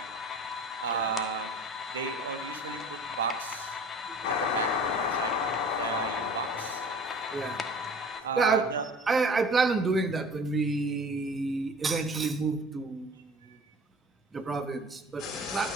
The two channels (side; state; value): both; normal; correlation 0.44